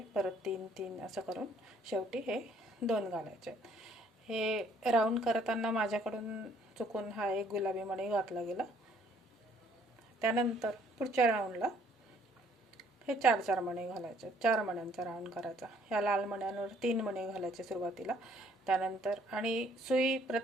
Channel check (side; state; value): both; normal; correlation 0.63